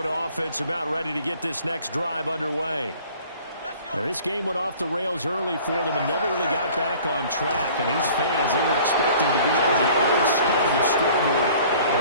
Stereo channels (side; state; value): both; inverted; correlation -0.50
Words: offense about ready to get this next drive underway. Now, this game went off the rails early for them and never really got back on track. And these fans, they were expecting to be on the other side of the scoreboard.